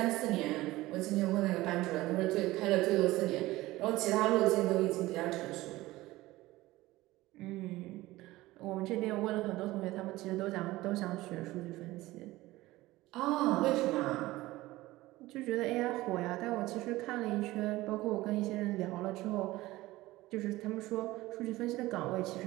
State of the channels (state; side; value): quieter; left; 18.2 dB